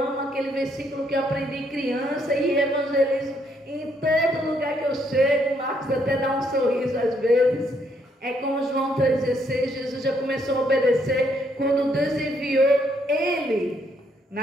aquele versículo que eu aprendi criança e evangelizo em todo lugar que eu chego. Marcos até dá um sorriso às vezes. É como João 3,16, Jesus já começou a obedecer quando Deus enviou ele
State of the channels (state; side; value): normal; both; correlation 0.72